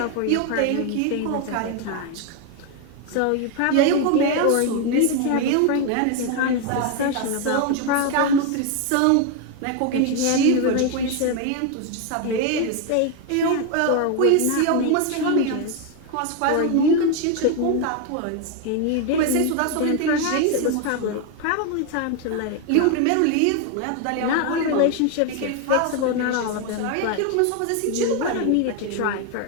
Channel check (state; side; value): different; both; correlation 0.01